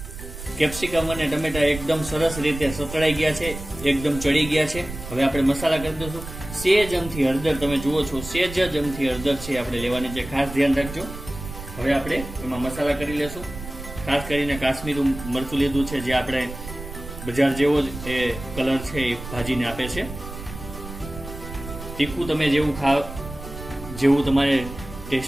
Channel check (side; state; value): right; noise; rumble, 11 dB below the sound